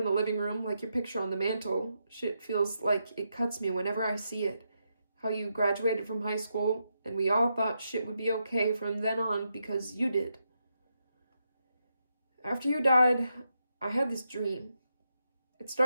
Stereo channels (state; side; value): inverted; both; correlation -0.84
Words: the living room, like your picture on the mantle. Shit feels like it cuts me whenever I see it. How you graduated from high school, and we all thought shit would be okay from then on because you did. After you died, I had this dream. It